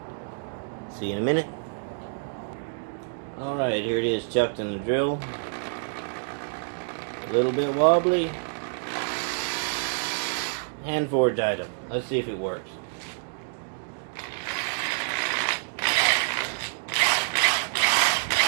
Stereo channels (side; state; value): left; silent; digital silence